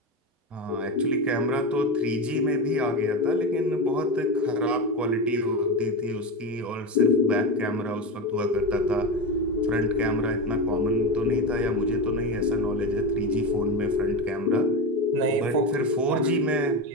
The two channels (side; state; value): both; normal; correlation 0.18